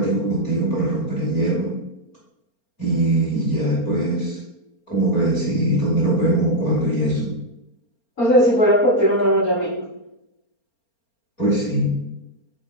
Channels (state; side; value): late; right; 4.3 ms